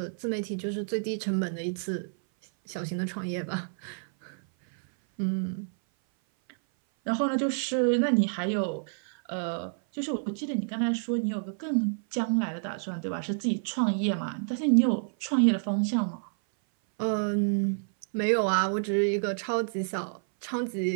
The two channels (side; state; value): left; silent; 57 dB below the other